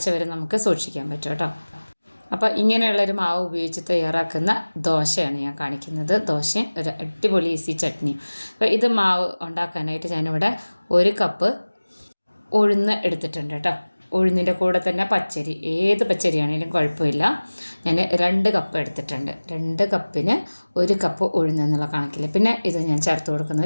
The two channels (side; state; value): both; inverted; correlation -1.00